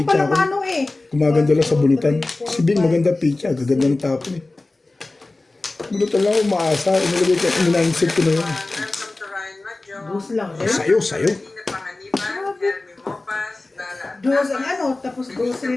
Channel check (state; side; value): quieter; right; 3.1 dB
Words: pala ako. mano eh. Gumaganda lang sa bunutan. Si Bing maganda pitcha. Gaganda ng tapon eh. Bunutan lang ako umaasa. Inilagay ko. Ininainsit ko na yun. Dos lang eh. Sayo. Dos ang ano, tapos dos rin